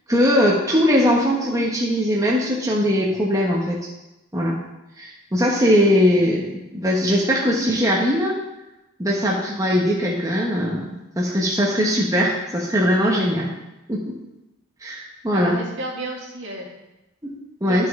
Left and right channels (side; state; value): both; normal; correlation 0.59